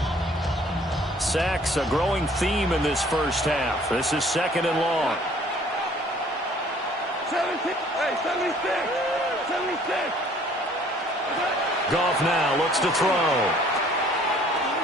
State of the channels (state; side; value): normal; both; correlation 0.56